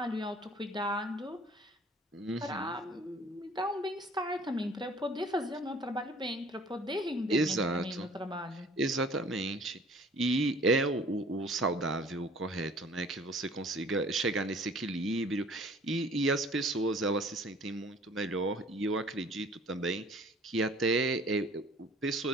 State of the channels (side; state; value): both; normal; correlation 0.52